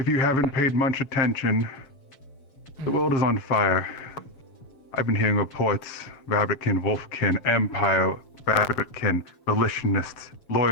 you haven't paid much attention, the world is on fire. I've been hearing reports: Rabbitkin, Wolfkin, Empire, Rabbitkin, Relationists,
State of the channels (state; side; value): late; right; 7.1 ms